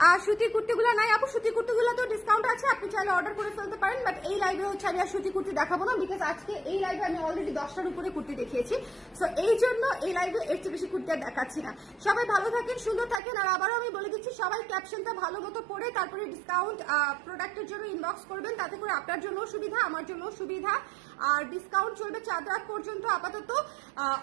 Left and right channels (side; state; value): left; drops out; at 13.2 s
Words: আর সুতি কুর্তিগুলো নাই আপু, সুতি কুর্তিগুলো তো ডিসকাউন্ট আছে, আপনি চাইলে অর্ডার করে ফেলতে পারেন। বাট এই লাইভে হচ্ছে আমি আর সুতি কুর্তি দেখাবো না, বিকজ আজকে এই লাইভে আমি অলরেডি 10টার উপরে কুর্তি দেখিয়েছি। সো এই জন্য এই লাইভে এর চেয়ে বেশি কুর্তি আর দেখাচ্ছি না। সবাই ভালো থাকেন, সুন্দর থাকেন। আর আবারও আমি বলে দিচ্ছি, সবাই ক্যাপশনটা ভালো মতো পড়ে তারপরে ডিসকাউন্ট প্রোডাক্টের জন্য ইনবক্স করবেন, তাতে করে আপনার জন্য সুবিধা, আমার জন্য সুবিধা। আর ডিসকাউন্ট চলবে 4 রাত পর্যন্ত আপাতত,